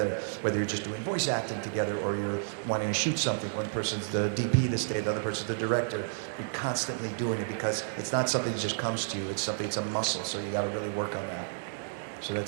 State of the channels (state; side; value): silent; left; digital silence